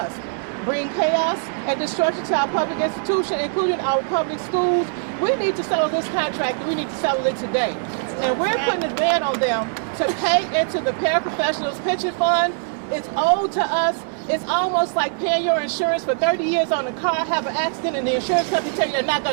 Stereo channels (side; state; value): left; silent; digital silence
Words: bring chaos and destruction to our public institution, including our public schools. We need to settle this contract, and we need to settle it today. And we're putting a demand on them to pay into the paraprofessionals pension fund. It's owed to us. It's almost like paying your insurance for 30 years on a car, have an accident, and the insurance company tell you they're not